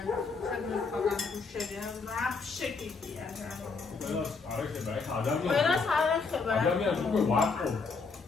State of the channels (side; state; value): right; quieter; 4.6 dB